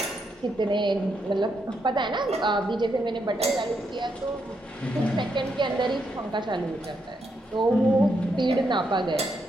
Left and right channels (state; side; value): normal; both; correlation 0.80